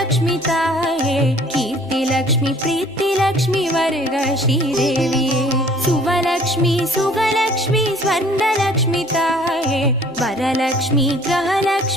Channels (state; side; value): normal; both; correlation 0.54